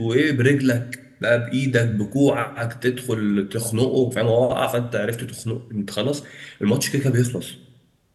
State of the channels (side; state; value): both; identical; correlation 1.00